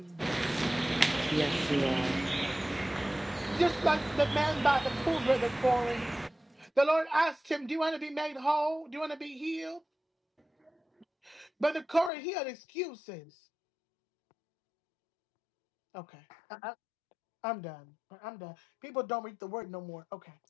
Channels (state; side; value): drops out; right; at 12.1 s